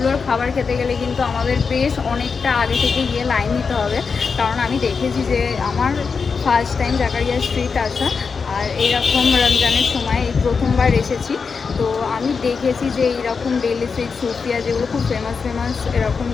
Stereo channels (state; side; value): quieter; right; 5.3 dB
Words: খাবার খেতে গেলে কিন্তু আমাদের বেশ অনেকটা আগে থেকে গিয়ে লাইন দিতে হবে। কারণ আমি দেখেছি যে আমার ফার্স্ট টাইম জাকারিয়া স্ট্রিট আসা, আর এইরকম রমজানের সময় এই প্রথমবার এসেছি। তো আমি দেখেছি যে এইরকম দিল্লি সিক্স, সুফিয়া যেগুলো খুব ফেমাস এরকম